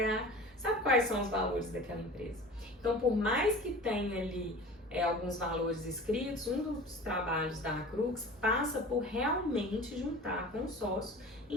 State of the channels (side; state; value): both; normal; correlation 0.39